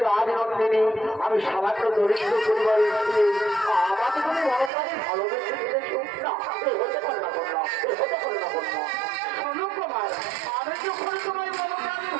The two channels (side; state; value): left; drops out; at 4.7 s